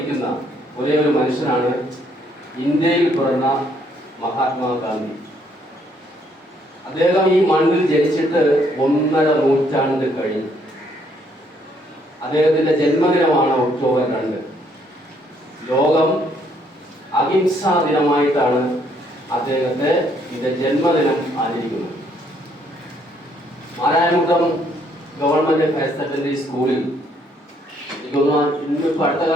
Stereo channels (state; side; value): normal; both; correlation 0.69